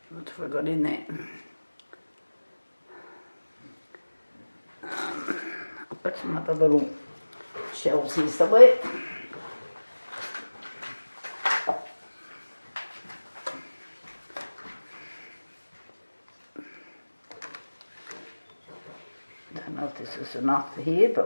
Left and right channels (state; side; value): inverted; both; correlation -1.00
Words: What have I got in there? I've got some other little shells here somewhere. Don't know if this is enough for here,